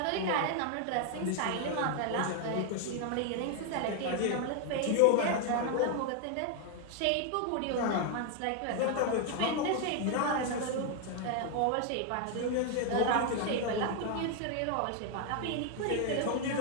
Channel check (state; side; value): different; both; correlation 0.00